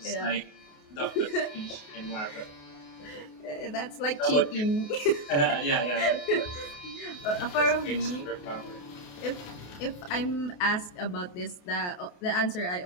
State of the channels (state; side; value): late; right; 28 ms